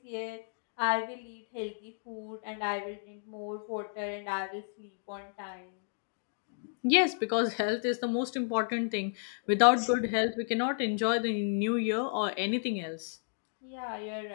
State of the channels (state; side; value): silent; right; digital silence